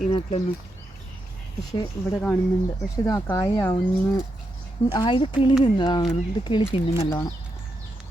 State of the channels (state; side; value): normal; both; correlation 0.84